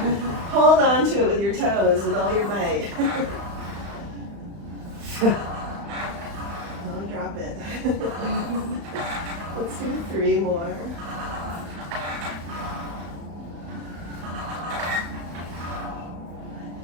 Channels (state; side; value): late; left; 35 ms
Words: hold on to it with your toes with all your might. Don't drop it. Let's do 3 more.